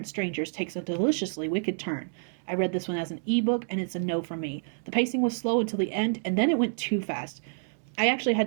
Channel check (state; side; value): silent; left; digital silence